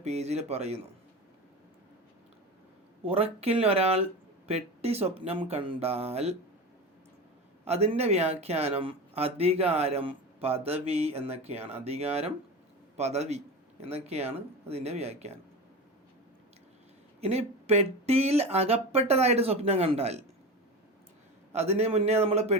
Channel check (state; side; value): normal; both; correlation 0.26